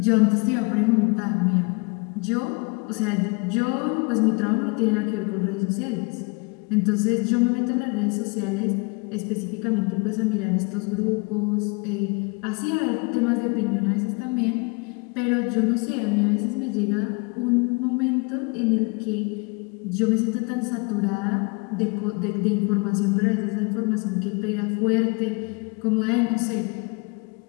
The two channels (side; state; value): right; quieter; 30.6 dB